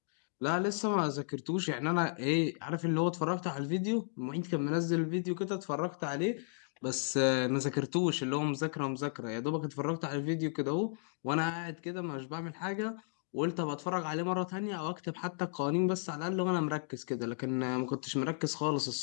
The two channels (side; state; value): right; silent; digital silence